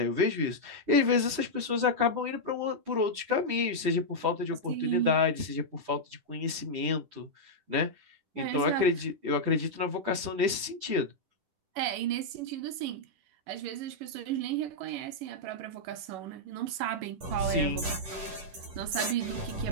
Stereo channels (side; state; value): left; late; 10 ms